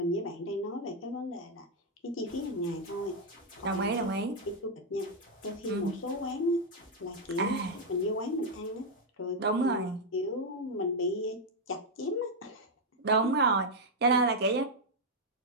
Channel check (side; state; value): both; normal; correlation 0.00